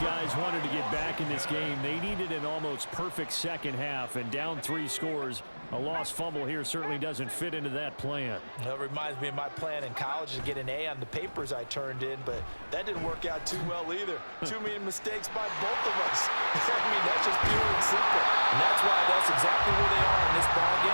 guys wanted to get back in this game, they needed an almost perfect second half, and down 3 scores. A lost fumble here certainly doesn't fit into that plan. Well, it reminds me of my plan in college to get an A on the papers I turned in, but that didn't work out too well either. Too many mistakes by both of us. I mean, that's just pure and simple. And that's why that's exactly where they are in this ball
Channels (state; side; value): inverted; both; correlation -1.00